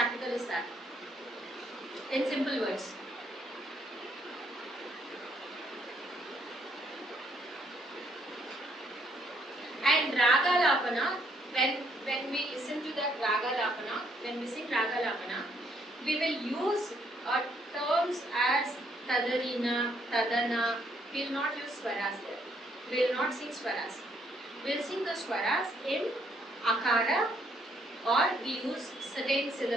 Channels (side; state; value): both; normal; correlation 0.70